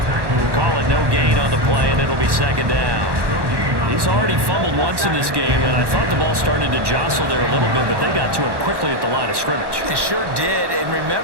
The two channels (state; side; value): late; left; 1.1 ms